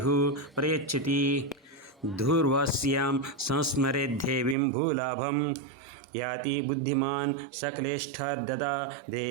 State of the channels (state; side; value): drops out; left; at 4.5 s